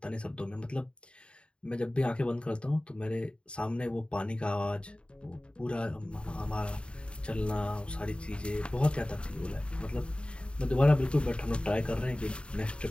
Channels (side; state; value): right; late; 0.055 ms